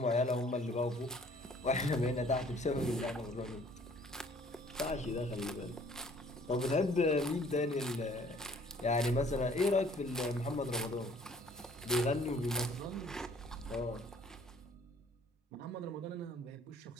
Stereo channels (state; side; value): normal; both; correlation 0.57